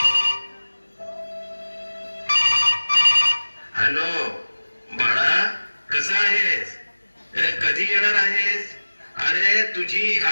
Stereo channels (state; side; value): inverted; both; correlation -1.00